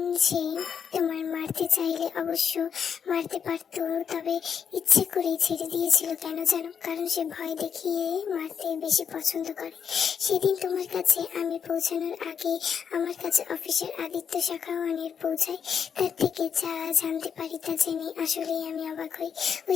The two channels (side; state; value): right; quieter; 7.3 dB